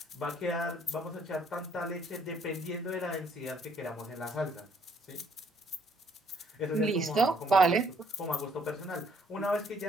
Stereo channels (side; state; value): both; normal; correlation 0.65